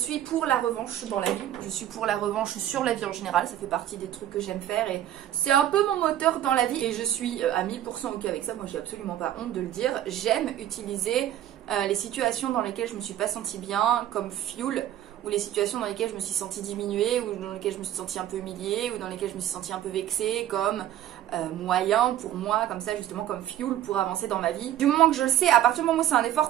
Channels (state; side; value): quieter; left; 12.1 dB